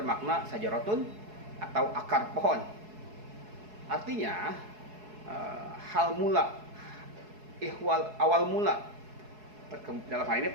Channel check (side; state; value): left; late; 4.7 ms